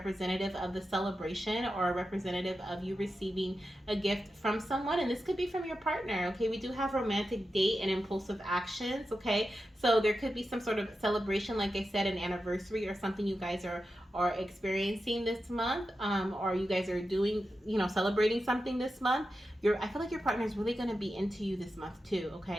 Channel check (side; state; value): both; normal; correlation 0.90